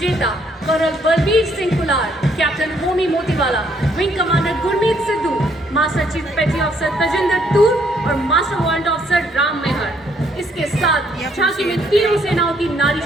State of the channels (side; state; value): both; normal; correlation 0.69